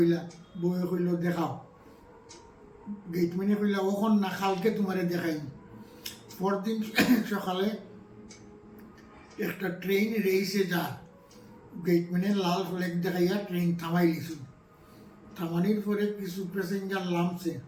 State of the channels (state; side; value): identical; both; correlation 1.00